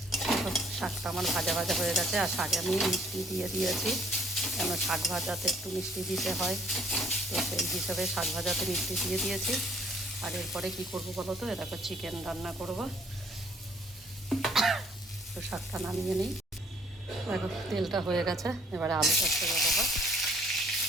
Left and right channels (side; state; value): both; normal; correlation 0.61